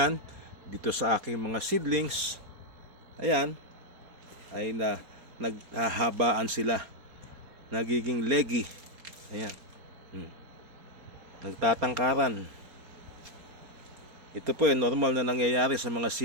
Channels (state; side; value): late; left; 4.3 ms